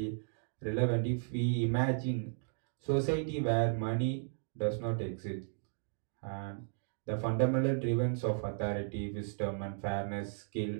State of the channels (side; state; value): left; silent; digital silence